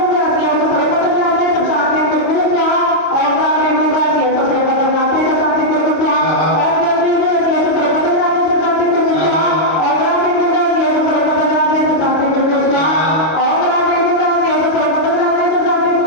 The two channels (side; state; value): right; late; 26 ms